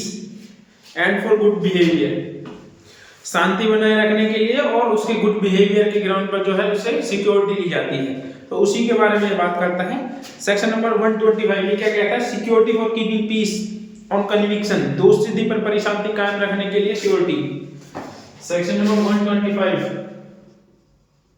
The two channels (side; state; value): both; identical; correlation 1.00